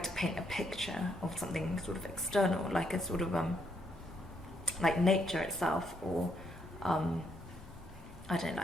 to paint a picture of something sort of external, like a sort of like nature itself, or I don't know,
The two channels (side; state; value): both; normal; correlation 0.74